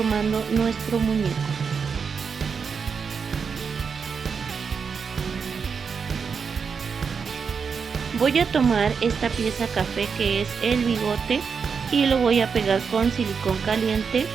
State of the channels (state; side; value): quieter; left; 5.9 dB